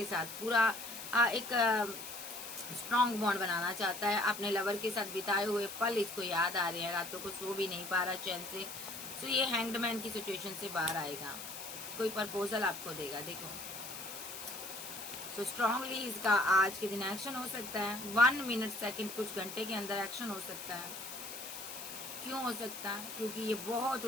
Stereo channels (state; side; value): noise; left; hiss, 9 dB below the sound